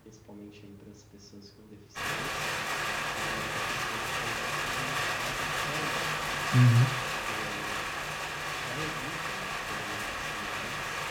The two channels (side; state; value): both; identical; correlation 1.00